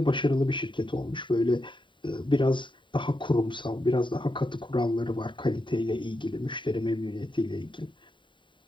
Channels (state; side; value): late; right; 0.23 ms